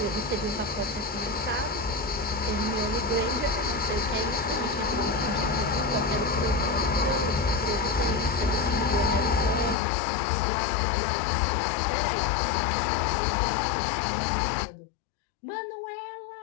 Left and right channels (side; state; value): right; drops out; at 9.8 s